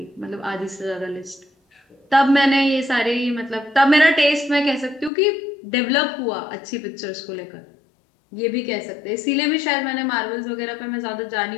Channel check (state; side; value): drops out; right; at 5.1 s